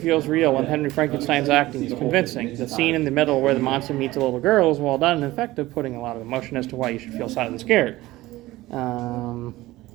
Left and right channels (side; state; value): left; quieter; 17.8 dB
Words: real, and Henry Frankenstein's acting is convincing. The scene in the middle where the monster meets a little girl is well done and effective, putting a lot of emotion as to why you should feel sad and scared.